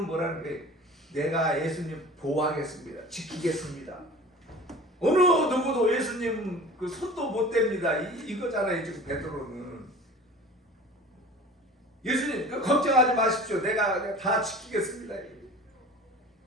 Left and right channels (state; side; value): normal; both; correlation 0.40